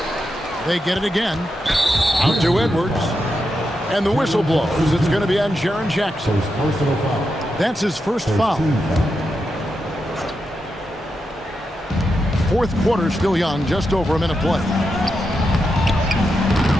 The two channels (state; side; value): normal; both; correlation 0.86